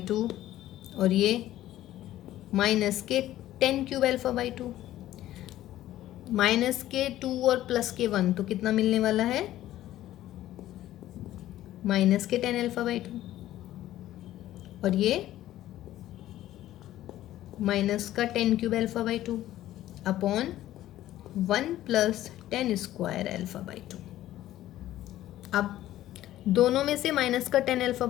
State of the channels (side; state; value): right; quieter; 13.9 dB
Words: 2, और ये माइनस के 10 क्यूब एल्फा बाई 2, माइनस के 2 और प्लस के 1, तो कितना मिलने वाला है माइनस के 10 एल्फा बाई 2, और ये माइनस का 10 cube alpha by 2 upon 1 plus 10 square alpha by 2। अब दोनों में से माइनस का 10 एल्फा